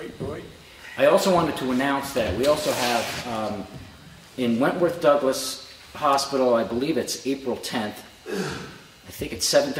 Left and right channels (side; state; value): both; identical; correlation 1.00